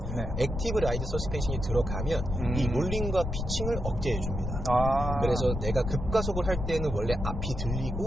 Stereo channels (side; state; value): left; noise; rumble, 4 dB below the sound